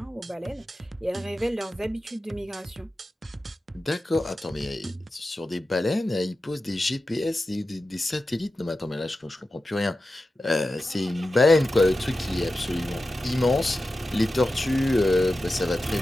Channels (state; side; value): normal; both; correlation 0.93